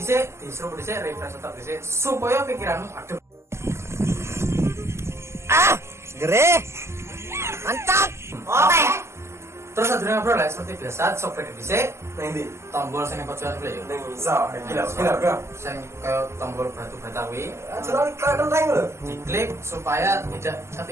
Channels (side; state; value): left; late; 0.13 ms